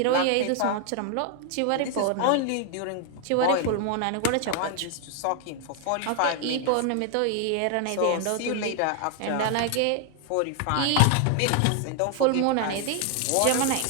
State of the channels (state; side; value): different; both; correlation 0.00